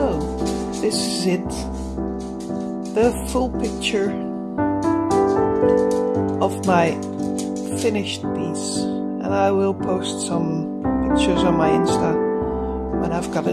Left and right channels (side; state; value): both; identical; correlation 1.00